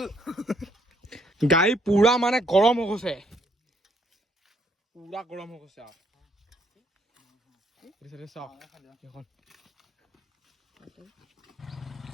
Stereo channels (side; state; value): both; normal; correlation 0.69